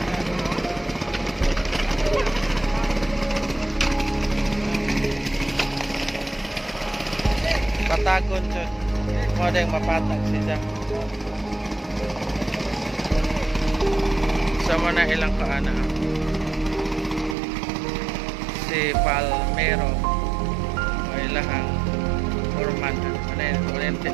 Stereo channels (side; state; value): left; drops out; at 17.4 s